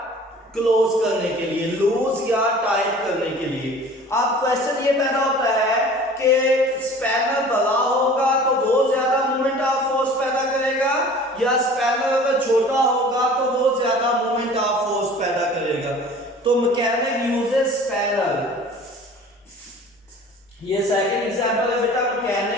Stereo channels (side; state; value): both; normal; correlation 0.45